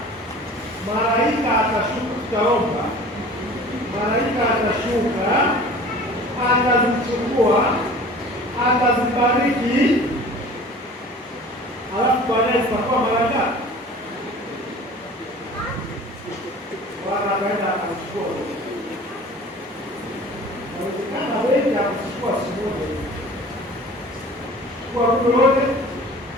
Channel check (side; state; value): both; normal; correlation 0.43